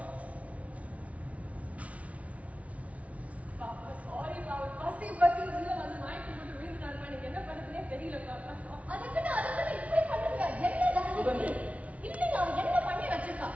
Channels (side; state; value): left; late; 0.066 ms